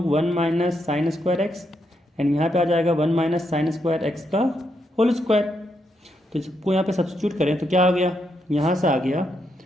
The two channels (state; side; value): normal; both; correlation 0.80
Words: 1 minus sine square x and यहाँ पे आ जाएगा 1 माइनस साइन स्क्वायर एक्स का होल स्क्वायर। तो इसको यहाँ पे सब्स्टिट्यूट करें तो क्या आ गया, यहाँ से आ गया